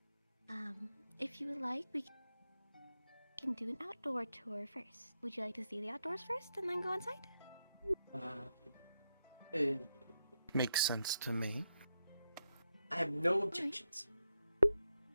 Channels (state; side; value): inverted; both; correlation -0.84